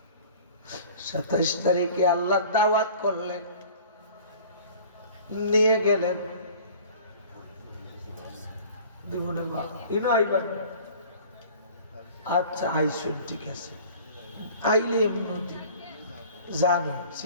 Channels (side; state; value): both; inverted; correlation -0.46